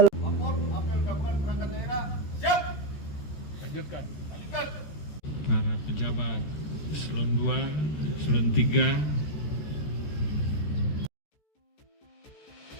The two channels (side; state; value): right; late; 13 ms